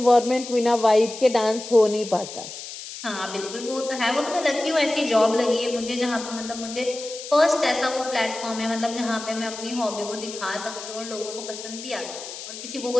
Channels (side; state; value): left; noise; hiss, 11 dB below the sound